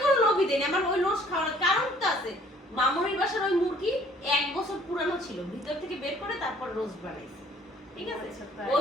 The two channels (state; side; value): normal; both; correlation 0.58